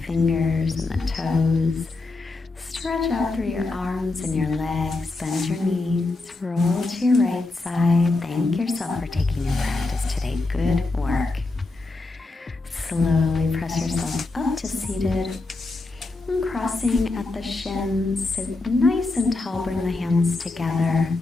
and the toes. Stretch out through your arms and your legs, bend your knees, roll to your right side. Thank yourself for taking your practice today. Good work. Slowly press yourself up to seated. And crossing at the shins, sit nice and tall, bring the hands together.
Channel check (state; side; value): quieter; right; 3.3 dB